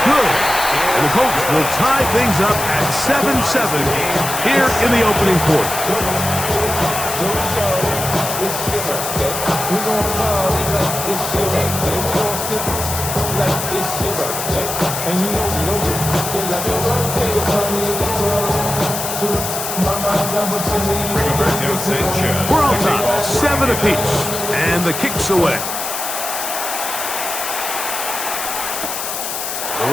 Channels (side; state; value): left; noise; hiss, 5 dB below the sound